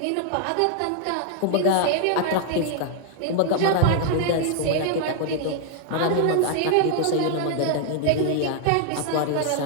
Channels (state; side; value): different; both; correlation 0.00